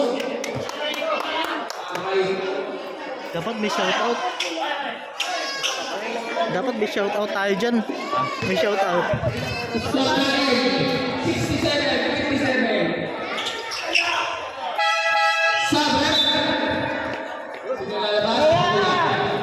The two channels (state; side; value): identical; both; correlation 1.00